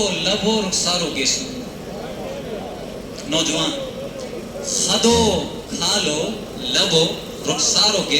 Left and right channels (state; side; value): identical; both; correlation 1.00